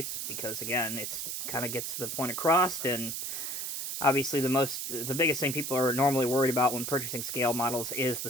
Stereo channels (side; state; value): right; noise; hiss, 4 dB below the sound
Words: because, again, it's kind of gets the point across. And obviously, the biggest thing people are normally worried about when purchasing scale models is the